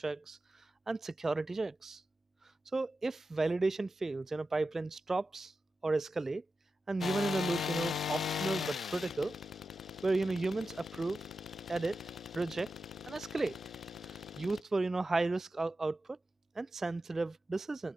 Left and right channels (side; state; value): both; normal; correlation 0.92